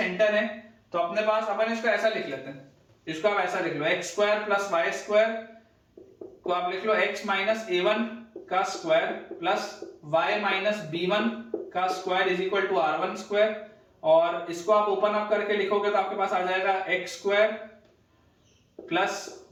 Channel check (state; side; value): identical; both; correlation 1.00